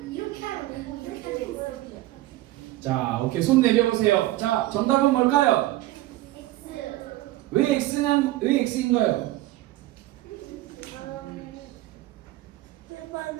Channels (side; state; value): left; quieter; 16.7 dB